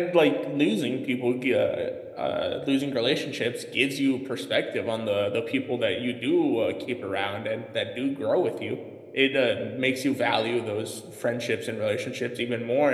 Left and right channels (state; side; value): identical; both; correlation 1.00